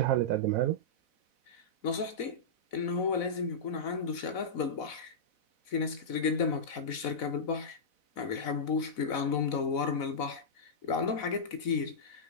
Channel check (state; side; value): late; right; 4.0 ms